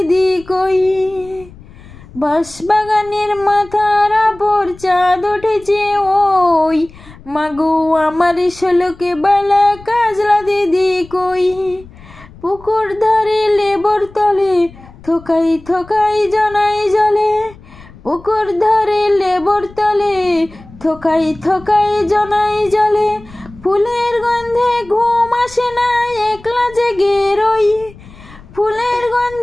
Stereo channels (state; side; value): noise; left; rumble, 21 dB below the sound